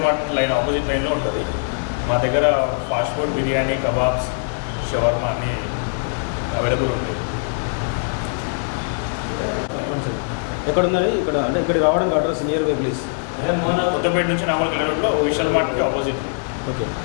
మార్ట్ లైన్ ఆపోజిట్ లైన్లో ఉంటుంది. మా దగ్గర fast food, biryani, kebabs, shawarma అన్నీ అవైలబుల్ ఉంటాయి. ఎక్కడ ఉన్నది? ఇక్కడ అంటే ఇక్కడ రావడానికి address nearby please. Kothapet నుంచి నాగోల్కి వెళ్ళే రోడ్లో విశాల్ మార్ట్కి ఆపోజిట్. ఓకే.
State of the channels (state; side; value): silent; right; digital silence